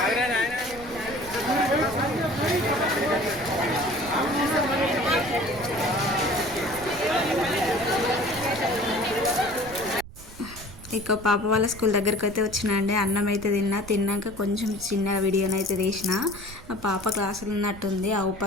ఇక పాప వాళ్ళ స్కూల్ దగ్గరికి అయితే వచ్చినండి. అన్నం అయితే తిన్నాక కొంచెం చిన్న వీడియోనైతే తీసిన. ఆ పాప క్లాసులు ఉన్నట్టుంది.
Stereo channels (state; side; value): noise; right; rumble, 17 dB below the sound